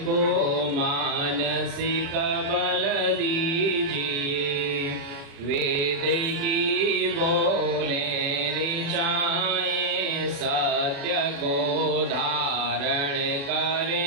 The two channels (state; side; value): late; left; 35 ms